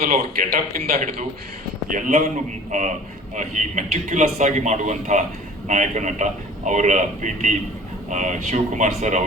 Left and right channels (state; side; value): normal; both; correlation 0.46